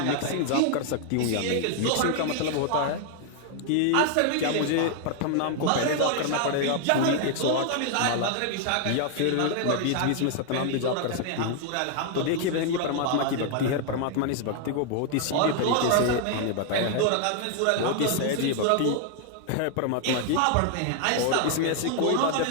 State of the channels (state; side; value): different; both; correlation 0.00